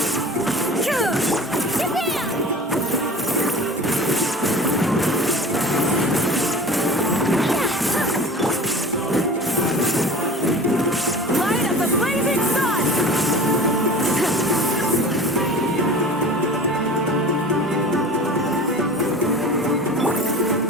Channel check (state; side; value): normal; both; correlation 0.39